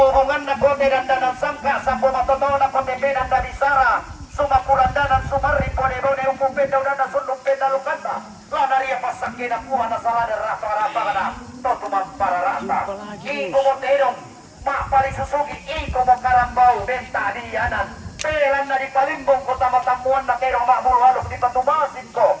na ko tedandanan sangka sambo matotoh na ko tebenan dari sara sumakurandanan sumari bone-bone umum benda udana sundung benda lukanda lanaria pasakin aku hana salah dan rasa-rasa kada totumam para rasa iko mo terong mak pali susugi iko mo karambau benta dianan pelan na di palimbong ko tamatamuan na terong mak bulhalok di patumasin ko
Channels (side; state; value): both; identical; correlation 1.00